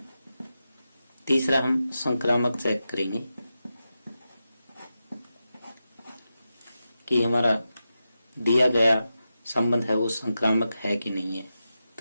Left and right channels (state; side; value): inverted; both; correlation -0.90